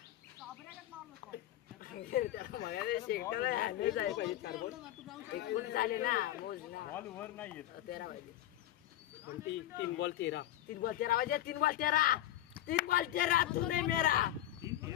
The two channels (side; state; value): right; quieter; 13.3 dB